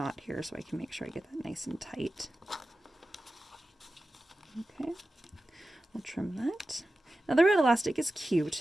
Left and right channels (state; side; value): normal; both; correlation 0.94